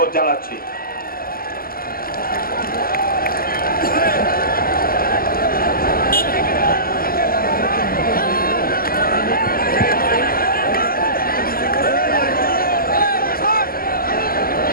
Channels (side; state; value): right; late; 0.42 ms